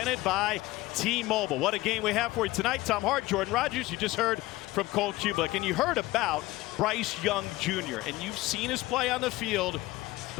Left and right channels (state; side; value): quieter; right; 18.7 dB